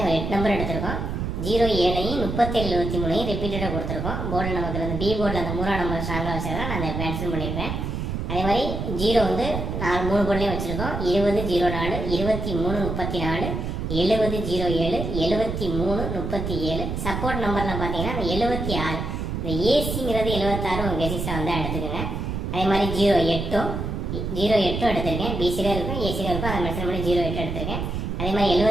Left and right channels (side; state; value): right; noise; rumble, 3 dB below the sound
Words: 8 நம்பர் எடுத்திருக்கோம். 07ஐயும் 37 23ஐயும் ரிப்பீட்டடாக கொடுத்துருக்கோம். போர்டில் நமக்கு அந்த பி போர்டில் அந்த 3ஆம் நம்பர் ஸ்ட்ராங்காக வச்சதான் நான் அதை மென்ஷன் பண்ணியிருப்பேன். அதே மாதிரி 0 வந்து 3 போர்ட்லேயும் வச்சுருக்கோம். 20 04 23 34 70 07 73 37. சப்போர்ட் நம்பரில் பார்த்தீங்கன்னா அந்த 76 இந்த ஏசிங்கிறது 76 உங்கள் கெசிஸில் வந்து எடுத்துக்கோங்க. அதே மாதிரி 08 எடுத்திருக்கேன். பிசியில் இருக்கும் ஏசியில் இருக்கும், அதை மென்ஷன் பண்ணி 08 எடுத்திருக்கேன். அதே மாதிரி